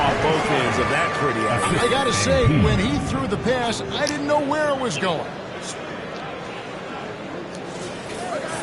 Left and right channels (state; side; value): identical; both; correlation 1.00